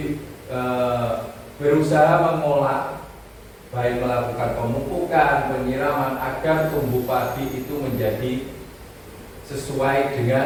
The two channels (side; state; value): both; identical; correlation 1.00